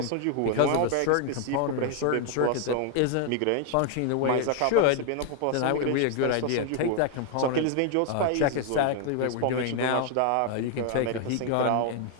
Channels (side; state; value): both; different; correlation 0.00